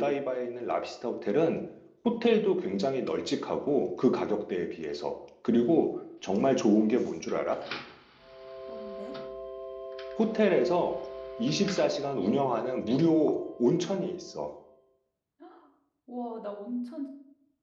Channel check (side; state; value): both; identical; correlation 1.00